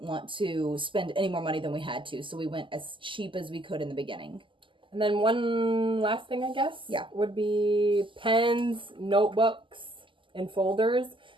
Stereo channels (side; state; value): left; late; 0.25 ms